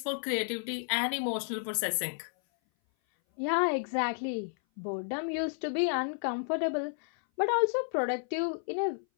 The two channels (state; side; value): silent; right; 57 dB below the other